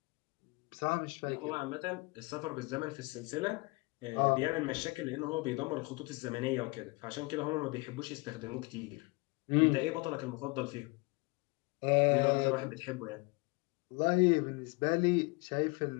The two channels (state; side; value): quieter; right; 26.4 dB